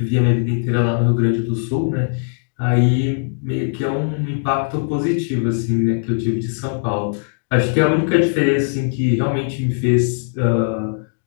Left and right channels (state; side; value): silent; right; digital silence